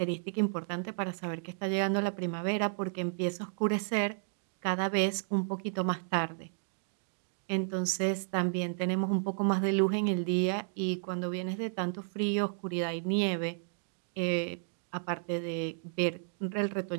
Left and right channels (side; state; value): left; silent; digital silence